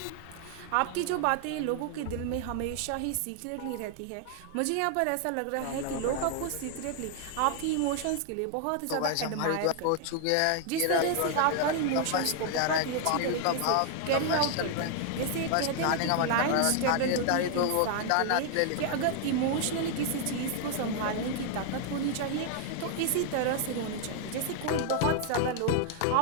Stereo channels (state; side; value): different; both; correlation 0.00